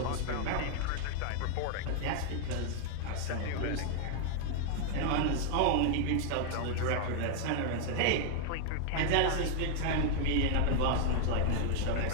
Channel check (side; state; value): both; different; correlation 0.00